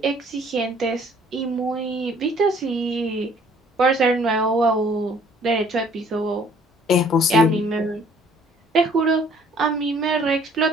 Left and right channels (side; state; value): both; normal; correlation 0.58